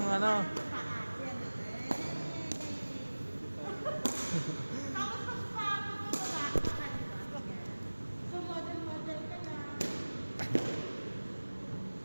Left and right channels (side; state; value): both; inverted; correlation -1.00